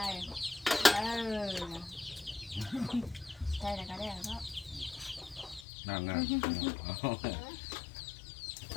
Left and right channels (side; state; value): right; drops out; at 5.7 s